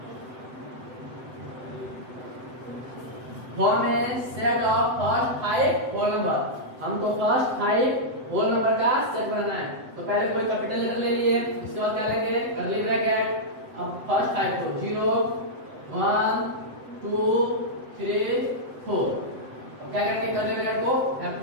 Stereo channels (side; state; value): left; late; 7.9 ms